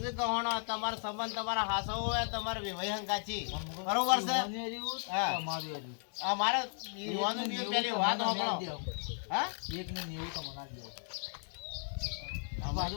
ગહોણો તમારો સંબંધ તમારા હાસો હોય તમારે વિવાહ હંગાચી બરોબર છે હા આ મારે યુવાનું બી પેલી વાત હોકળો હા એક ને 90 તો મના દે આ બાજુ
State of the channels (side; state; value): right; silent; 54 dB below the other